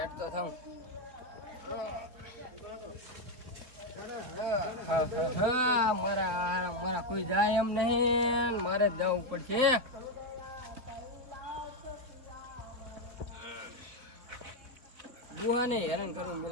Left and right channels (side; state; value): left; late; 3.8 ms